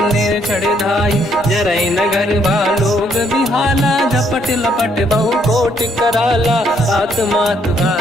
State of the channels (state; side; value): normal; both; correlation 0.70